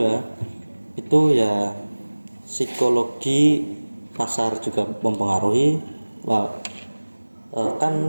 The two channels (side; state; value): both; inverted; correlation -1.00